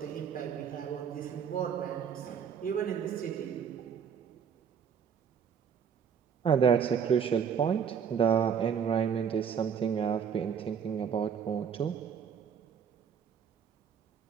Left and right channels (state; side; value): quieter; left; 7.3 dB